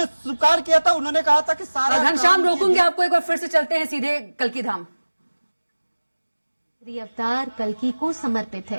स्वीकार किया था, उन्होंने कहा था कि सारा घनश्याम रोकूंगे आपको एक बार, फिर से चलते हैं सीधे कल्की धाम। अवतार कल्की को समर्पित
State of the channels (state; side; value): inverted; both; correlation -1.00